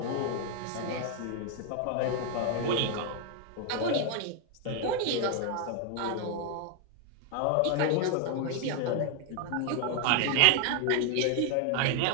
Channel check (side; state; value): both; different; correlation 0.01